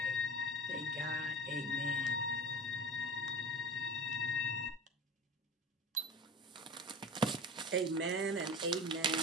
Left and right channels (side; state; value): both; normal; correlation 0.34